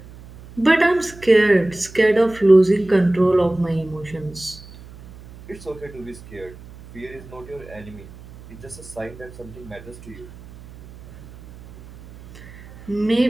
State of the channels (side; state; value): right; noise; hum, 19 dB below the sound